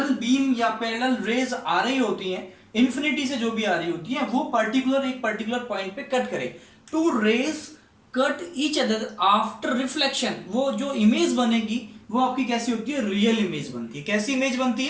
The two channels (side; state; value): both; identical; correlation 1.00